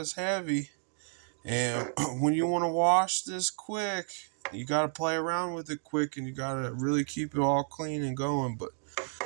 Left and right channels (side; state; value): left; silent; 57 dB below the other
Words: heavy. And when you want to wash this quick, you got to play around with it quick, and you got to really keep it all clean and going. But